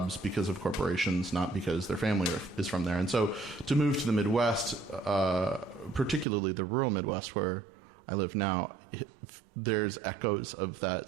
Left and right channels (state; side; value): drops out; left; at 6.2 s